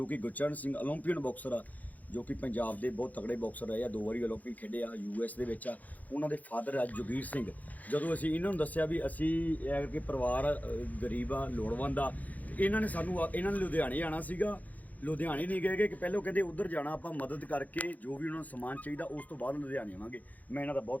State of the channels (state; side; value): late; right; 0.078 ms